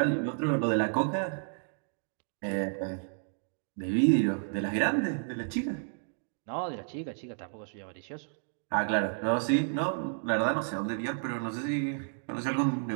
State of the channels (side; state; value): left; silent; digital silence